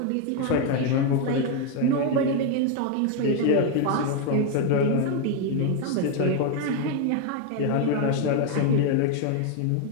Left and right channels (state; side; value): different; both; correlation 0.01